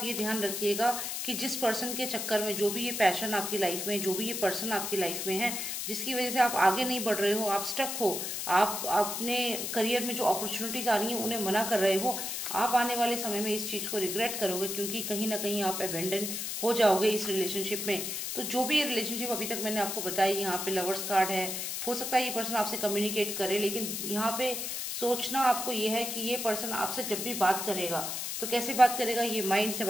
ये ध्यान रखिएगा कि जिस पर्सन के चक्कर में, जो भी ये पैशन आपकी लाइफ में, जो भी ये पर्सन आपकी लाइफ में है, जिसकी वजह से आप आगे नहीं बढ़ रहे हो, आप स्टक हो, आप अपने करियर में जो अपॉर्चुनिटीज आ रही हैं उन्हें मना कर रहे हो, आप आने वाले समय में इस चीज को रिग्रेट करोगे, क्योंकि कहीं ना कहीं आप अबेंडन हो जाओगे इस रिलेशनशिप में। तो जो भी ये रिलेशनशिप अभी तक मैंने आपको बताई, यहाँ पे लवर्स कार्ड है, हो सकता है ये पर्सन आपसे कम्युनिकेट करे, लेकिन यहाँ पे सोचना आपको ये है कि ये पर्सन आपसे जब भी बात करेगा तो कैसे बात करेगा, ये माइंड से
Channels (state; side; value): noise; left; hiss, 3 dB below the sound